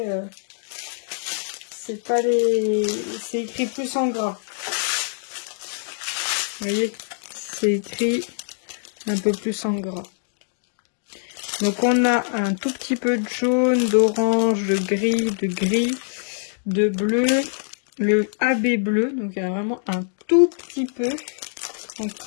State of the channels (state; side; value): silent; right; digital silence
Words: c'est pas les... C'est écrit plus en gras. Vous voyez, c'est écrit un peu plus en gras. Donc on a un tout petit peu de jaune, d'orange, de gris, de bleu, le AB bleu, donc il y a vraiment un tout petit peu. Donc